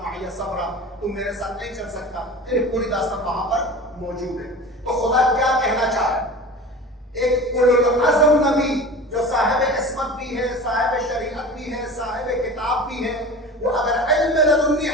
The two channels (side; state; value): both; normal; correlation 0.35